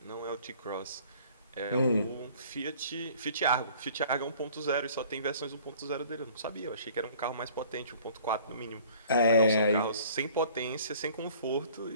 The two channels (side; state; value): both; inverted; correlation -0.52